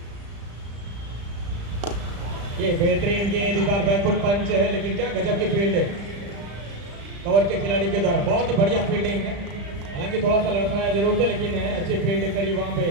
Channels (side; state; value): left; late; 35 ms